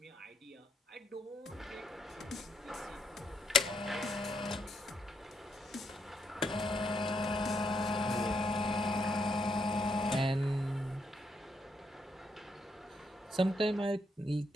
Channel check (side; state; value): both; normal; correlation 0.75